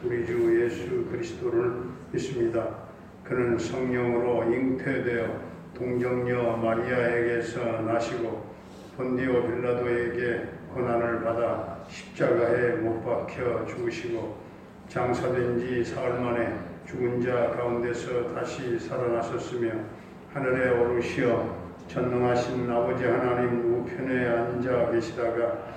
우리 주 예수 그리스도를 믿습니다. 그는 성령으로 잉태되어 동정녀 마리아에게서 나시고 본디오 빌라도에게 고난을 받아 십자가에 못 박혀 죽으시고 장사된 지 사흘 만에 죽은 자 가운데서 다시 살아나셨으며 하늘에 오르시어 전능하신 아버지 하나님 우편에 앉아 계시다가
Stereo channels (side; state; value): both; identical; correlation 1.00